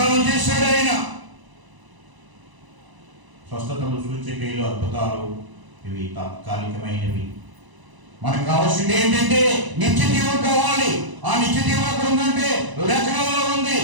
చేశాడు ఆయన. స్వస్థతలు, సూచక్రియలు, అద్భుతాలు ఇవి తాత్కాలికమైనవి. మనకు కావాల్సింది ఏంటంటే నిత్య జీవం కావాలి. ఆ నిత్య జీవం ఎక్కడ ఉందంటే లేఖనంలో ఉంది,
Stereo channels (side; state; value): left; late; 1.0 ms